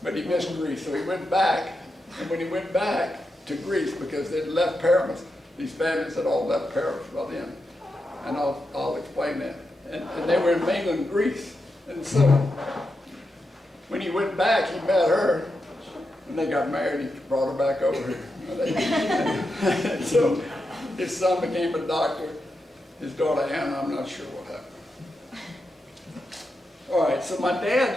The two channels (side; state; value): both; normal; correlation 0.87